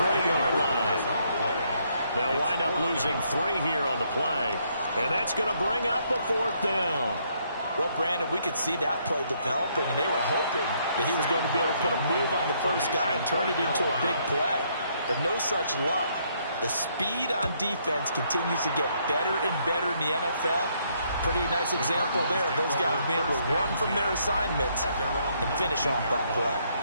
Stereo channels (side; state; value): both; inverted; correlation -0.71